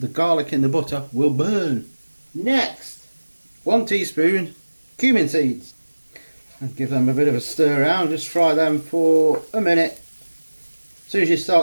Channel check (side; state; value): both; inverted; correlation -1.00